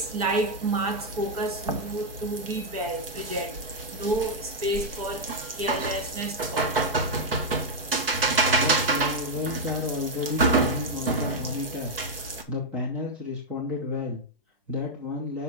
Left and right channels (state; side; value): normal; both; correlation -0.01